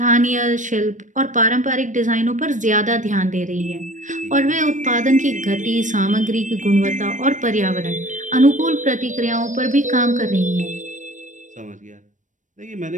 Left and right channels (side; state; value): left; late; 0.37 ms